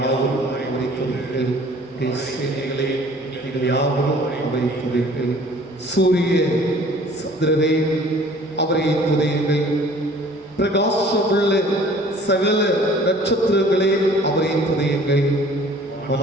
அவரை துதியுங்கள், சேனைகளே நீங்கள் யாவரும் அவரை துதியுங்கள். சூரிய சந்திரரே அவரை துதியுங்கள், பிரகாசமுள்ள சகல நட்சத்திரங்களே அவரை துதியுங்கள்.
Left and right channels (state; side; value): normal; both; correlation 0.51